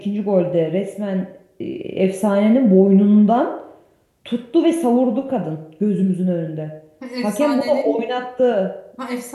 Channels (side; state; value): both; identical; correlation 1.00